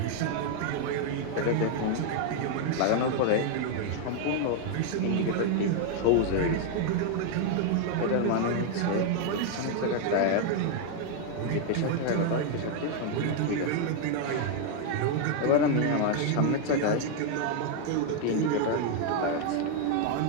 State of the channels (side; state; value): both; different; correlation 0.00